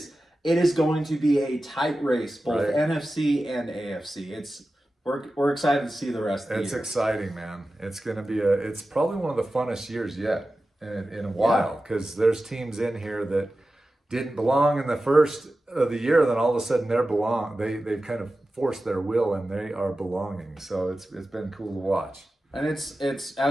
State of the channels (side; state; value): both; normal; correlation 0.94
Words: going to be a tight race, both right. NFC and AFC. We're excited to see the rest of the year. It's exciting, man. It's going to be it's probably one of the funnest years yet in a while, because there's teams in here that didn't belong in the first of the year, then all of a sudden they've kind of forced their will and they are belonging. So it's been cool to watch. And it's